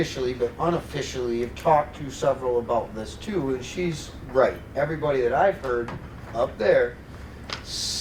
but unofficially, have talked to several about this too, and she's right. Everybody that I've heard up there,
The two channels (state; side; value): identical; both; correlation 1.00